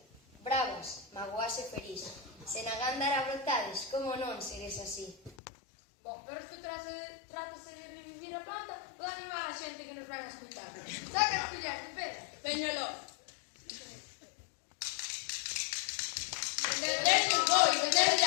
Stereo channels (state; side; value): drops out; right; at 5.4 s